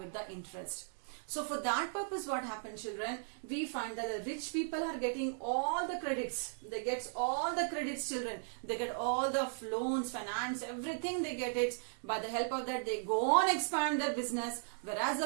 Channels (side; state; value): left; silent; digital silence